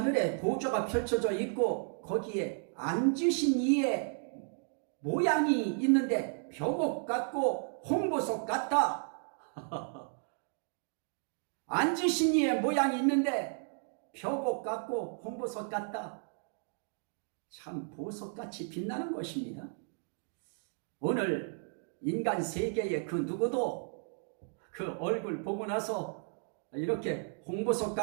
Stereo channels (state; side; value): silent; left; 55 dB below the other